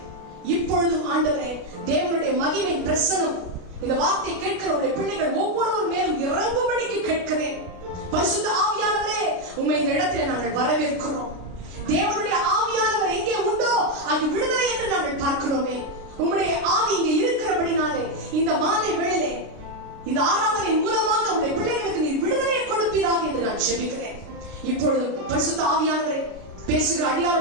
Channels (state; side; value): late; left; 33 ms